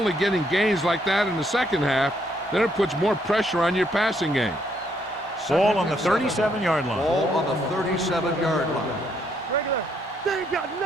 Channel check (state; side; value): normal; both; correlation 0.72